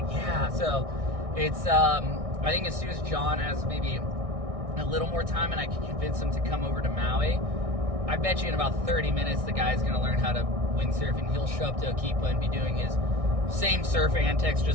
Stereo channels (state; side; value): late; left; 1.6 ms